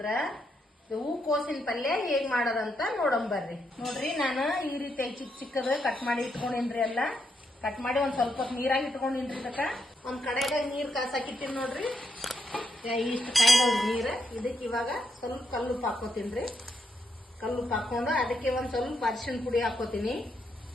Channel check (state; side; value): normal; both; correlation 0.80